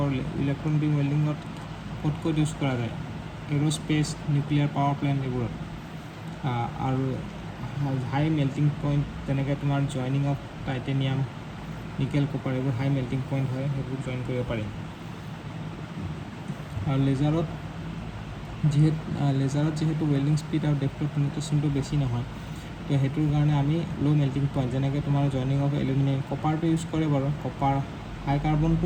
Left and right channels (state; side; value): identical; both; correlation 1.00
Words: ইলেক্ট্ৰন বিম ৱেল্ডিঙত ক'ত ইউজ কৰা যায়, এৰ'স্পেচ, নিউক্লিয়াৰ পাৱাৰ প্লেণ্ট এইবোৰত. আৰু হাই মেল্টিং পইণ্ট, যেনেকৈ তোমাৰ joining of titanium, nickel, copper, এইবোৰ হাই মেল্টিং পইণ্ট হয়, সেইবোৰ জইন কৰিব পাৰি. আৰু লেজাৰত যিহেতু ৱেল্ডিং স্পীড আৰু ডেপ্থ অফ পেনিট্ৰেশ্যনটো বেছি নহয়, তো সেইটোৰ কাৰণে আমি ল' মেল্টিং পইণ্ট, যেনেকৈ তোমাৰ জইনিং অফ এলুমিনিয়াম, কপাৰটো ইউজ কৰে বাৰু. কপাৰ হাই